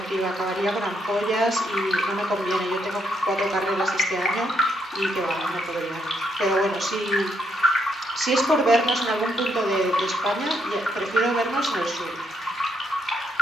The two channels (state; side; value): normal; both; correlation 0.75